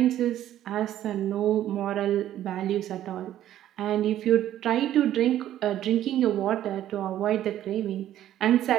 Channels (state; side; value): quieter; left; 12.2 dB